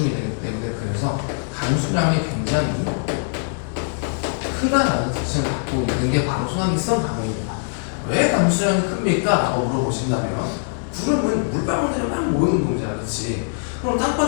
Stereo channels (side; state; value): right; silent; 64 dB below the other